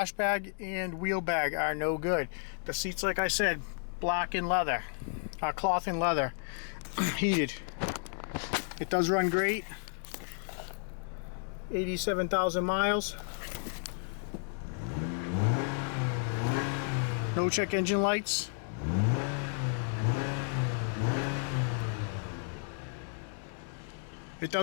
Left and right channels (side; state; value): right; silent; 56 dB below the other